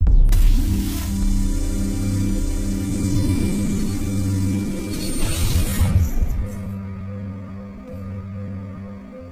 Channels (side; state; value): both; identical; correlation 1.00